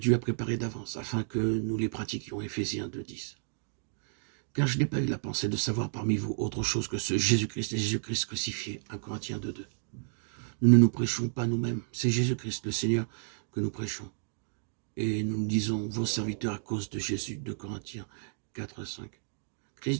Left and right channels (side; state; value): left; silent; digital silence